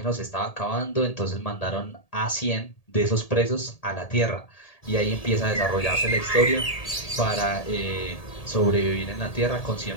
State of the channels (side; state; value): right; late; 1.8 ms